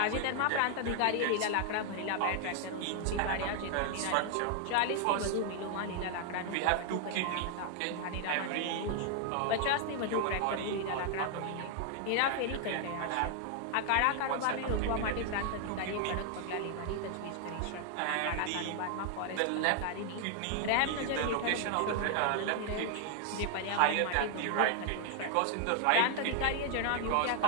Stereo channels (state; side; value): different; both; correlation 0.00